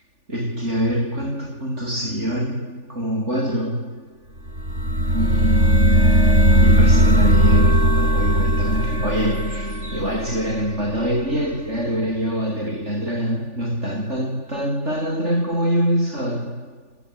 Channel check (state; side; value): late; left; 3.4 ms